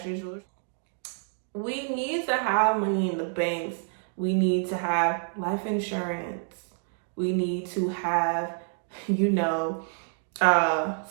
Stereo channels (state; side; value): silent; left; digital silence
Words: We need to have money in the banks. We need to have life insurance. We need to have,